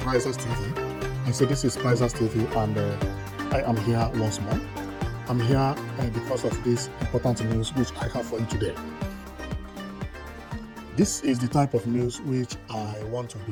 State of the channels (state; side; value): identical; both; correlation 1.00